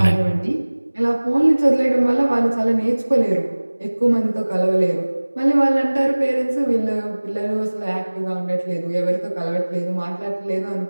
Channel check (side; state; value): both; inverted; correlation -1.00